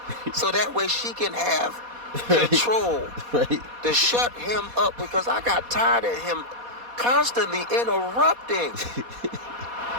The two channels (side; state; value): left; late; 4.2 ms